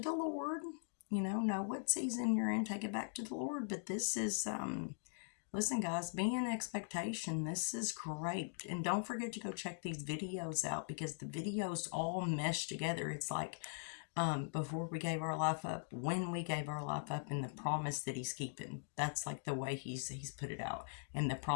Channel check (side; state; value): right; silent; digital silence